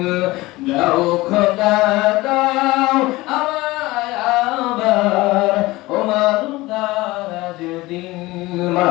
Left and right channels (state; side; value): quieter; right; 19.9 dB